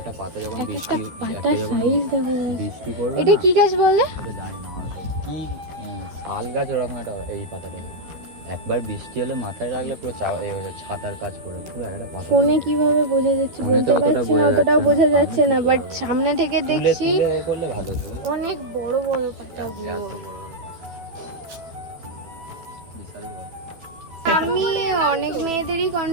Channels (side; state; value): left; late; 12 ms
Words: পাতা যখন একটা বৃষ্টি, পাতার সাইজ দেখো। বৃষ্টি পড়বে এটা না, কি গাছ বলে? এটা জানি না কি শাল গাছ ওরকম একটা, এই পাতাটা একবার বৃষ্টি হলে মাথায় রাখলে পুরো ছাতার কাজ করে পুরো একটা পাতা। ফোনে কিভাবে বোঝা যাচ্ছে ফোনে তো বলতে অতটা পারছি না, বোঝা অতটাও যাচ্ছে বোঝা না, যাচ্ছে না, সামনে বাট সামনে থেকে তুলে দেখছি তুলে এ করলে ভালো হতো। অনেক বড় বড় পাতাগুলো। এত বড় বড়। বিশাল বড়। আমি অনেক মেয়েদেরই